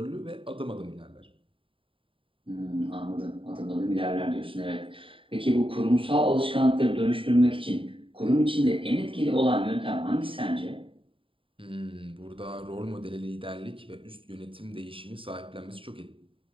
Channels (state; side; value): late; left; 0.25 ms